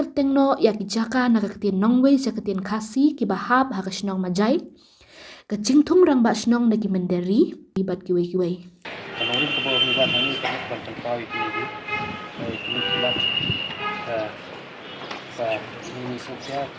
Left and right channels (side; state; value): both; identical; correlation 1.00